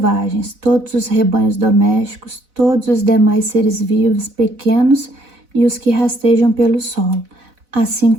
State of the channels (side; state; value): left; late; 4.0 ms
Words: todos os rebanhos domésticos, todos os demais seres vivos, pequenos e os que rastejam pelo solo, assim